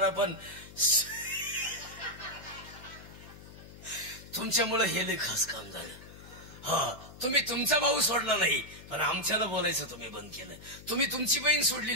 पण तुमच्यामुळे हे लई खास काम झालं. हा, तुम्ही तुमचा भाऊ सोडला नाही, पण आमच्याला बोलायचं तुम्ही बंद केलं. तुम्ही तुमची बहीण सोडली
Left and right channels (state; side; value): noise; left; hum, 17 dB below the sound